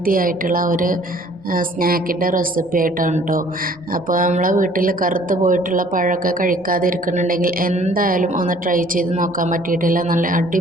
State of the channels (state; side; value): noise; right; rumble, 29 dB below the sound